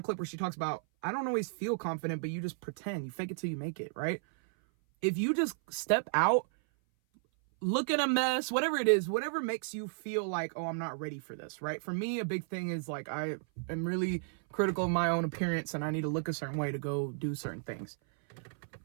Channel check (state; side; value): silent; left; 55 dB below the other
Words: clip where she talks about, I don't always feel confident, but you just pretend. You fake it till you make it, right? If you just step out, look at a mess, whatever it is, whatever makes you feel like, oh, I'm not ready for this, right? For me, a big thing is like, I am really critical of my own appearance and I need to look a certain way to go do certain things.